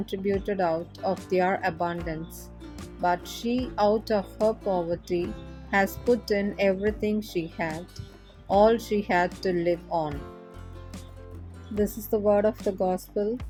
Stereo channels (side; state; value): both; identical; correlation 1.00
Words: out of their abundance, but she out of her poverty has put in everything she had, all she had to live on. This is the word of the gospel.